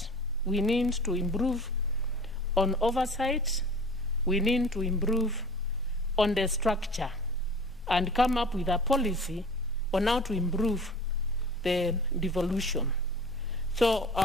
we need to improve on oversight, we need to improve on the structure, and come up with a policy on how to improve the devolution. So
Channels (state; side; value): normal; both; correlation 0.42